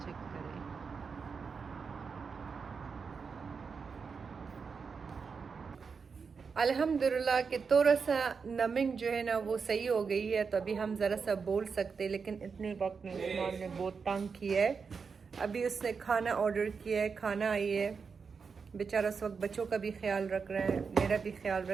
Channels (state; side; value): quieter; left; 5.5 dB